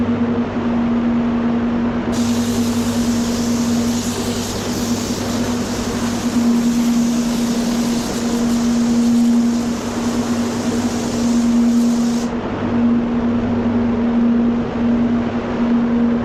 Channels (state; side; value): identical; both; correlation 1.00